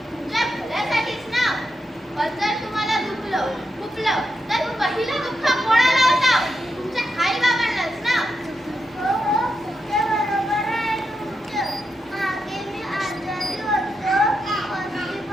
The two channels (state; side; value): normal; both; correlation 0.86